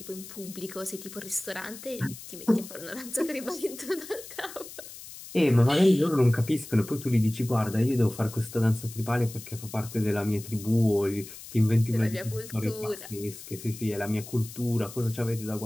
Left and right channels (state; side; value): noise; left; hiss, 14 dB below the sound